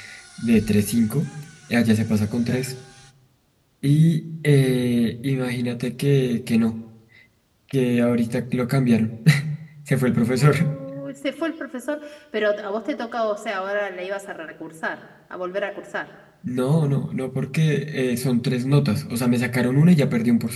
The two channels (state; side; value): identical; both; correlation 1.00